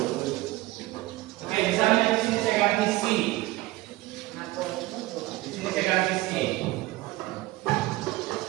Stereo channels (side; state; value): left; quieter; 18.8 dB